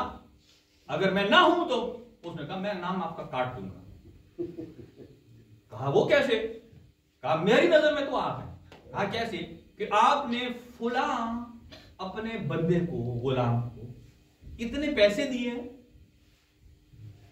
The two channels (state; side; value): identical; both; correlation 1.00